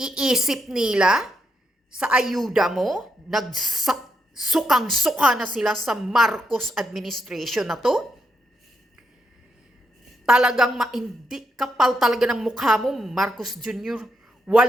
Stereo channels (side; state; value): both; normal; correlation 0.80